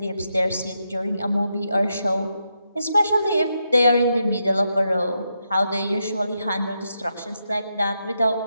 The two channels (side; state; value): both; inverted; correlation -0.83